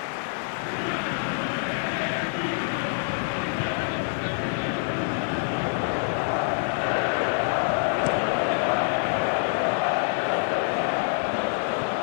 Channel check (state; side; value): silent; right; 61 dB below the other